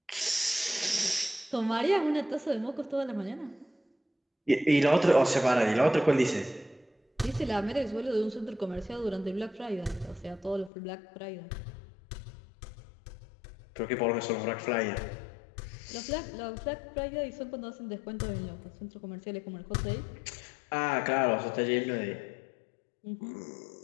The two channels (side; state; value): right; drops out; at 10.7 s